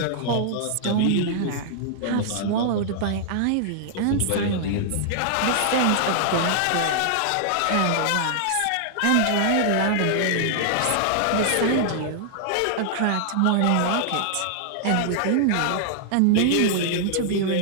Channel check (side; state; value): both; different; correlation -0.01